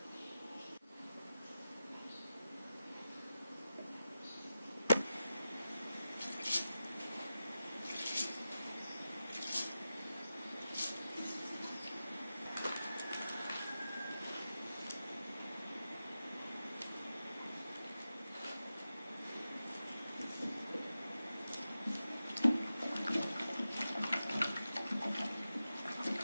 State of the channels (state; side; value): inverted; both; correlation -0.92